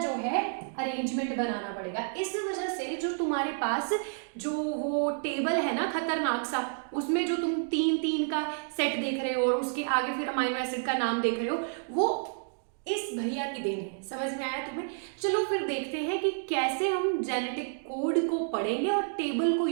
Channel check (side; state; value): left; silent; digital silence